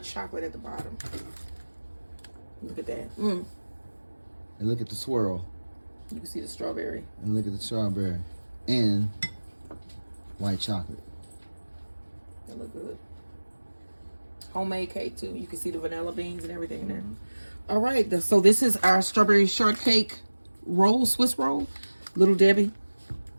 chocolate at the bottom. Look at that. And look at the swirl. You can see the strawberry. And look at the strawberry and white chocolate. That look good. Homemade cake too. You can see the vanilla beans and everything in there. All right, so this is our strawberry shortcake roll, Swiss roll, Little Debbie.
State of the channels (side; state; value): both; inverted; correlation -1.00